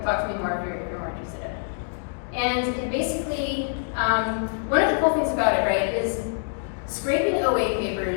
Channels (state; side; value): silent; right; digital silence